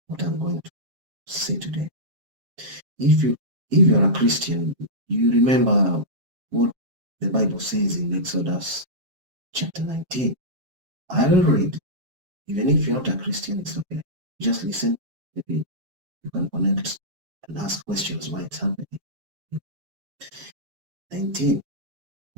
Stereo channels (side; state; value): left; late; 7.5 ms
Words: what I'm going to say today. If you if you're a Christian, you remember what the Bible says in Exodus chapter 19. I will read. Even if you're not a Christian, it's okay. Just listen. Maybe you can connect and ask questions why it's happening.